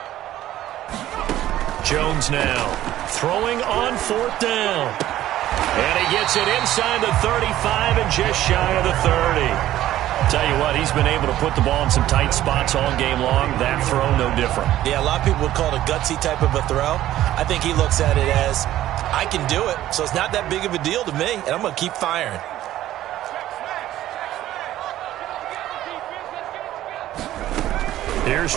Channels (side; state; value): left; quieter; 13.6 dB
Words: Jones now throwing on 4th down. And he gets it inside the 35 and just shy of the 30. Tell you what, he's been able to put the ball in some tight spots all game long. That throw, no different. Yeah, a lot of people would call it a gutsy type of a throw. I think he looks at it as, I can do it, so it's not that big of a deal to me, and I'm going to keep firing. Here's